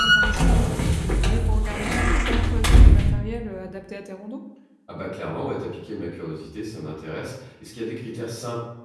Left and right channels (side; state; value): both; identical; correlation 1.00